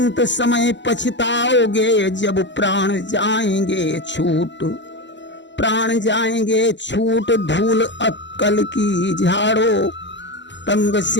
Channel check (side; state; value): right; late; 0.53 ms